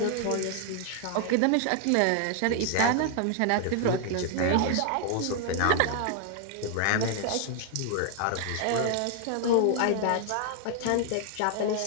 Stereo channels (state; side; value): different; both; correlation 0.00